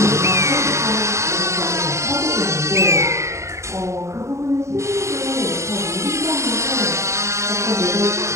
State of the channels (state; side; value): late; left; 0.14 ms